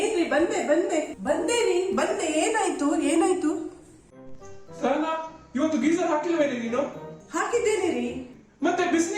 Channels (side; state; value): both; identical; correlation 1.00